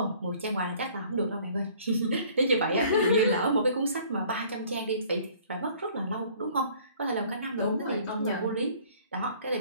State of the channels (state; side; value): inverted; both; correlation -0.55